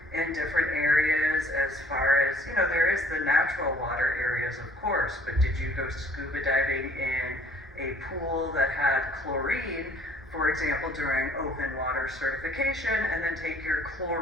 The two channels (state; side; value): normal; both; correlation 0.56